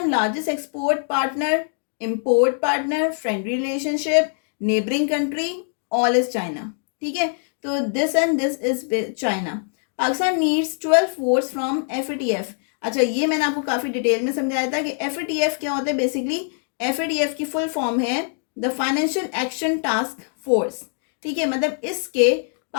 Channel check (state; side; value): silent; right; 61 dB below the other